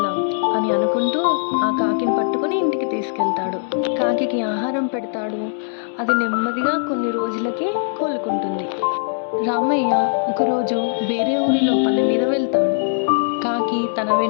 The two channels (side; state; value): right; silent; digital silence